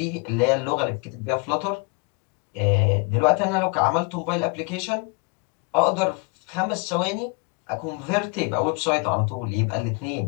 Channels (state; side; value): quieter; right; 30.3 dB